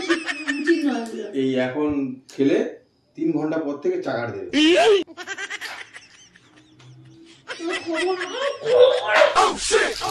উচিত নয়। এই এখন খেলে 3 ঘন্টা পর থেকে চাগার দেবে।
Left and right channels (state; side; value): identical; both; correlation 1.00